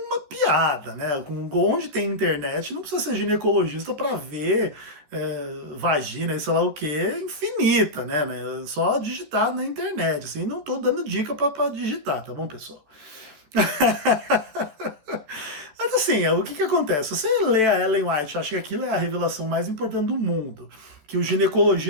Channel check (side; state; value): left; late; 14 ms